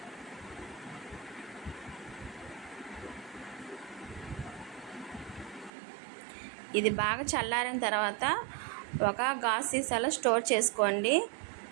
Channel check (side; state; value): left; drops out; at 5.7 s